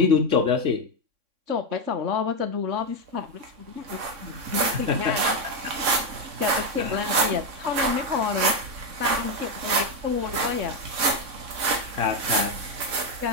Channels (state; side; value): late; left; 3.6 ms